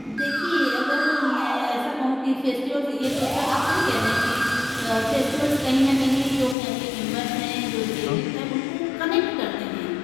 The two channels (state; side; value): drops out; right; at 6.6 s